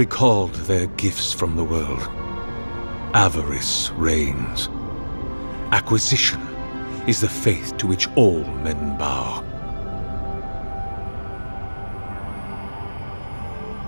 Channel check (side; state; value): both; inverted; correlation -1.00